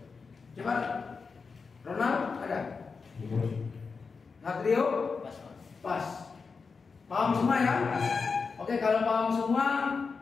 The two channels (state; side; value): quieter; right; 4.9 dB